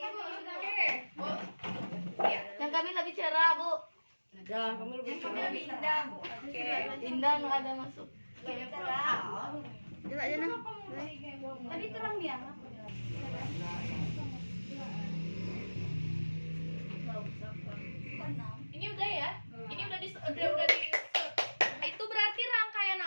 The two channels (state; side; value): inverted; both; correlation -1.00